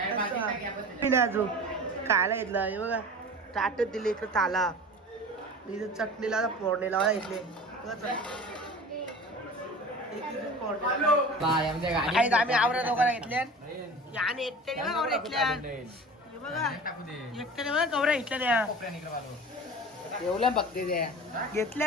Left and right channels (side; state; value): both; normal; correlation 0.38